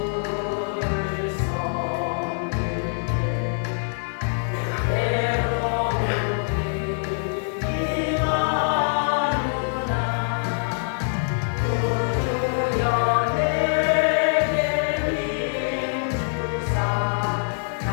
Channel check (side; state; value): right; silent; digital silence